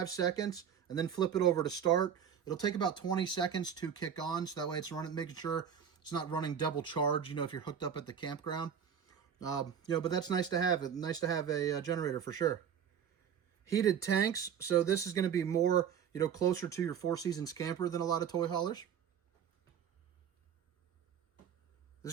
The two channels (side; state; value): left; quieter; 8.1 dB